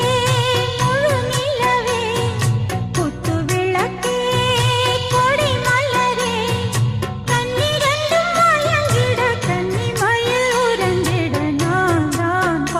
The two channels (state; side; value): identical; both; correlation 1.00